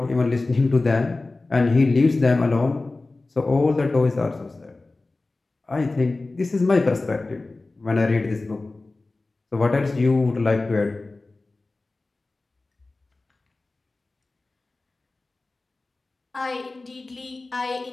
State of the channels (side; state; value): right; quieter; 3.3 dB